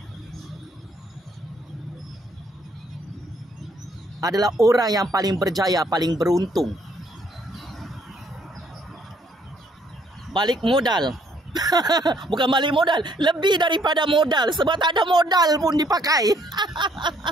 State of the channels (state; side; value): normal; both; correlation 0.66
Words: adalah orang yang paling berjaya, paling beruntung. Balik modal. Bukan balik modal, lebih daripada modal. Sebab tak ada modal pun dipakai.